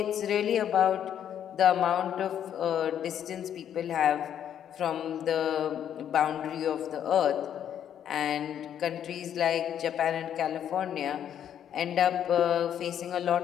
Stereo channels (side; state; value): right; quieter; 9.6 dB